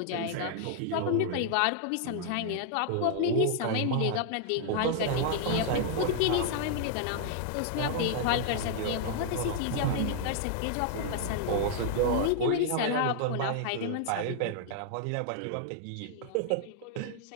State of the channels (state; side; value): different; both; correlation -0.01